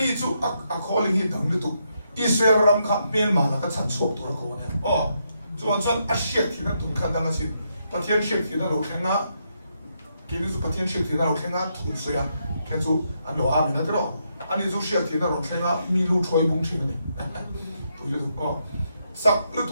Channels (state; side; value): inverted; both; correlation -0.79